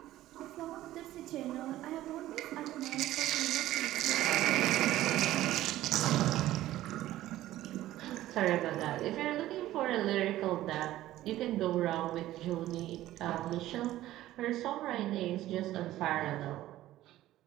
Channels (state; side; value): quieter; left; 14.7 dB